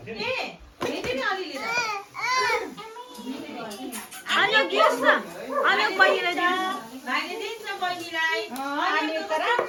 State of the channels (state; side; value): identical; both; correlation 1.00